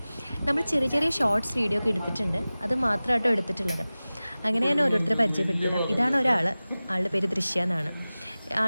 നമ്മൾ ചെറിയ ചെറിയ ഷോർട്സ് വീഡിയോ ഒക്കെ എടുത്തിട്ടുണ്ട്, അത് മാത്രമായിട്ടോ എടുത്തിട്ടുള്ളത്. അങ്ങനെ ഞാൻ ഓരോരുത്തരെ പരിചയപ്പെടുത്തിരാം. ഇതാണ് ഒരാൾ, ആളുടെ പേര് ദൃശ്യ എന്നാണ്.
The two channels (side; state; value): both; inverted; correlation -0.98